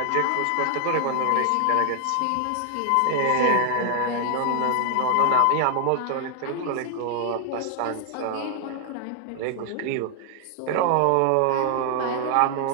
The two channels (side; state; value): both; different; correlation 0.00